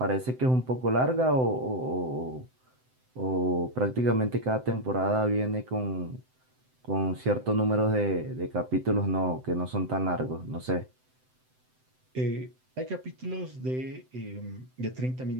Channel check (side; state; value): left; late; 7.8 ms